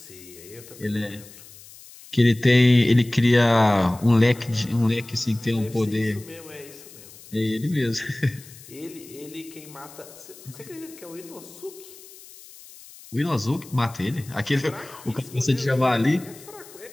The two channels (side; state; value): left; noise; hiss, 20 dB below the sound